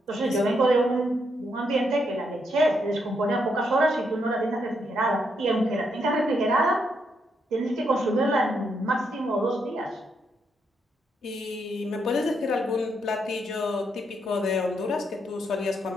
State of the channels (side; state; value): both; normal; correlation 0.78